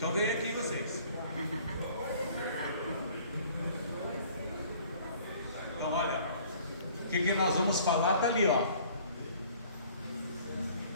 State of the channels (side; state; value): both; inverted; correlation -0.53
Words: vem aqui vocês. Então olha, o que nós vamos falar está ali, ó.